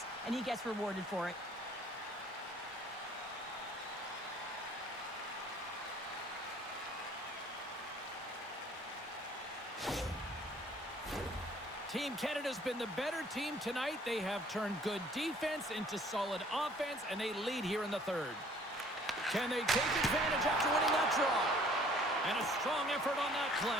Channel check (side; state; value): both; normal; correlation 0.56